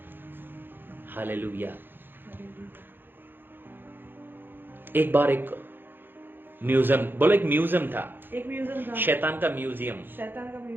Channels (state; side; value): late; left; 0.098 ms